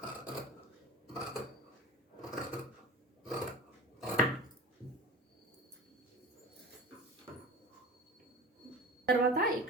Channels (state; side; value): normal; both; correlation 0.34